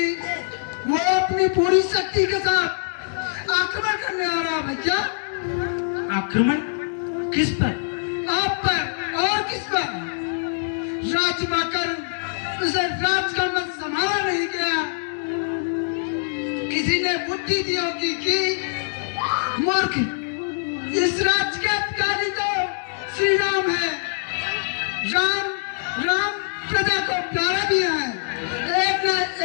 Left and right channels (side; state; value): right; silent; digital silence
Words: वो अपनी पूरी शक्ति के साथ आक्रमण करने आ रहा है भैया। आक्रमण किस पर? आप पर और किस पर? राज पाकर उसे राज का मत संभाला नहीं गया। किसी ने बुद्धि दी होगी कि मूर्ख इस राज्य के अधिकारी तो श्री राम है। राम प्रजा को प्यारा भी है। एक न